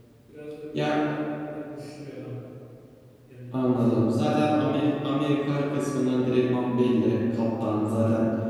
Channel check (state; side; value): identical; both; correlation 1.00